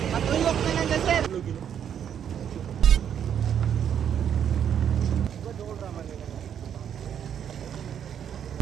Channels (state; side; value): quieter; left; 8.9 dB